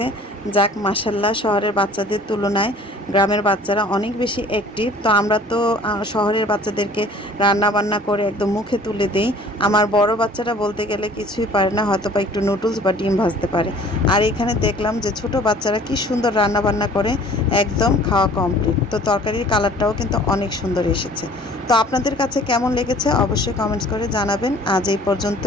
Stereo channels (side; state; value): both; normal; correlation 0.50